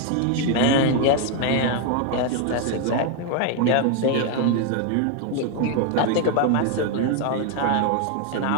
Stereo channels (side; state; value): both; different; correlation 0.01